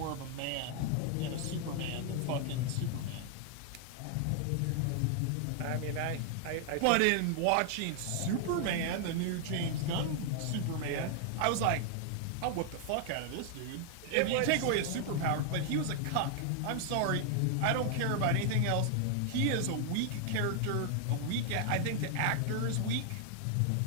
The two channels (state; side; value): different; both; correlation 0.00